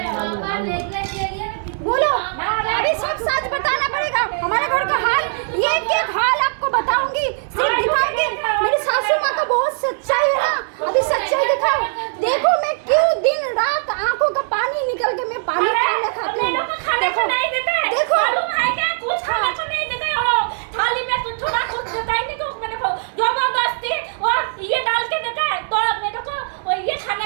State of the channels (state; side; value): silent; left; 65 dB below the other